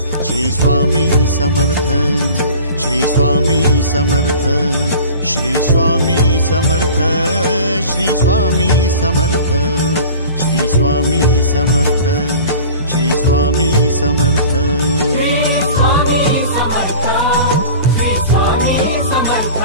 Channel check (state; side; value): inverted; both; correlation -0.41